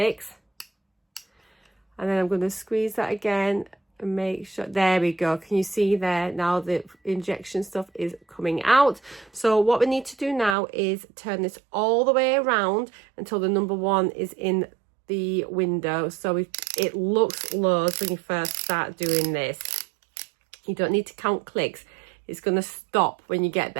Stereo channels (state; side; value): drops out; left; at 10.6 s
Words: and then I'm going to squeeze that again and make sure. There we go. Can you see there? Now the injection stuff is coming out. So what we need to do now is turn this all the way around until the number 1 is in the window. So it looks loads when you first start doing this. You don't need to count clicks. It's going to stop when you get